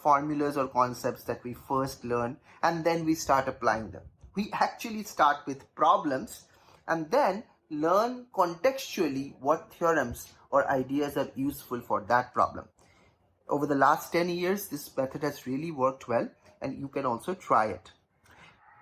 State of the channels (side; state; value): both; identical; correlation 1.00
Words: formulas or concepts that we first learn and then we start applying them. We actually start with problems and then learn contextually what theorems or ideas are useful for that problem. Over the last 10 years, this method has really worked well, and you can also try it.